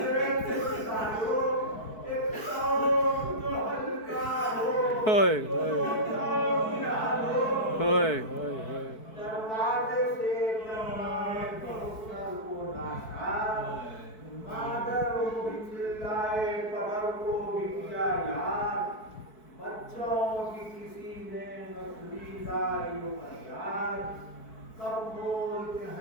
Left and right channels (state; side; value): late; right; 4.6 ms